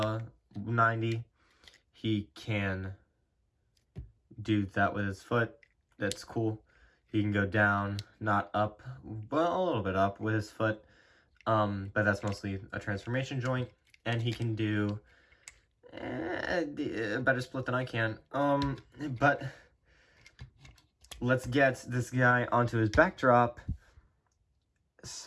90. He can do that with his foot. That's cool. He can go down, not up, well, a little bit up with his foot, but that's mostly a transformation joint. And he can do a better split than I can. But let's get this guy onto his backdrop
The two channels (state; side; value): identical; both; correlation 1.00